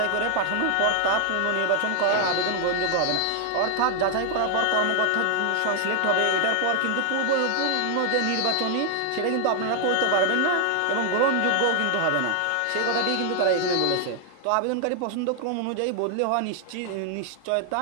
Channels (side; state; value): both; different; correlation 0.00